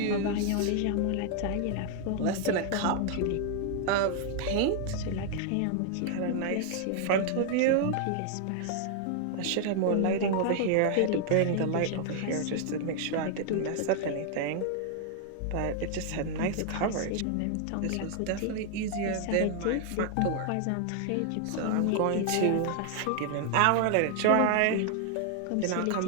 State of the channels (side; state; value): both; different; correlation 0.00